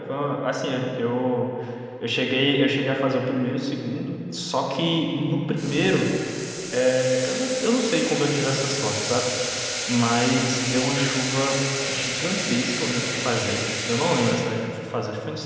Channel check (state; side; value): identical; both; correlation 1.00